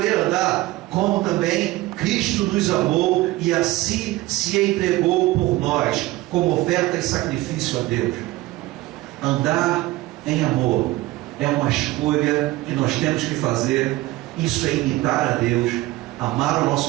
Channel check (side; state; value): left; quieter; 18.5 dB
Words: andar, como também Cristo nos amou e assim se entregou por nós, como oferta e sacrifício a Deus. Andar em amor é uma escolha que nós temos que fazer. Isso é imitar a Deus, amar o